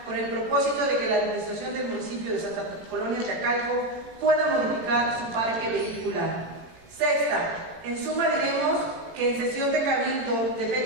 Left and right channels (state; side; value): late; left; 18 ms